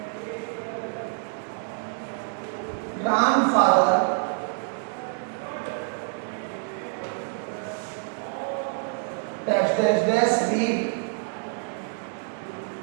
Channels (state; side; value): silent; left; 60 dB below the other